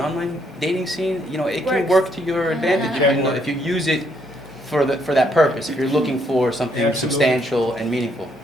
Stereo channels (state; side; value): normal; both; correlation 0.72